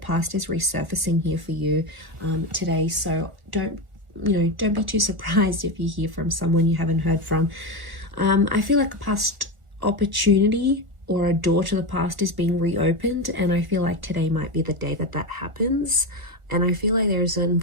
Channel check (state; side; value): late; left; 1.4 ms